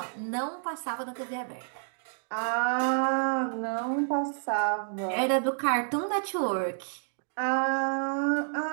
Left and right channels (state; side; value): silent; left; digital silence